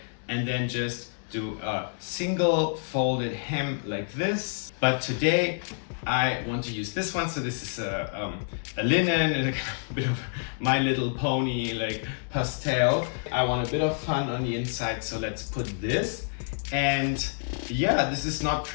and then just do a single folded hem like this. But today I want to use this one. So this is a linen, and a bit of My Little Pony like pastel. I want a bit of fun on the inside, so let's put this. And yeah, this is not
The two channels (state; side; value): silent; right; digital silence